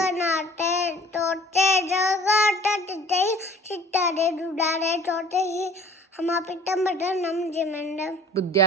तोते जगत तिते चित्तारे दुडारे तोते ही हमापितंबरनम जिमंडम બુદ્ધ્યા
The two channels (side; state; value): both; normal; correlation 0.49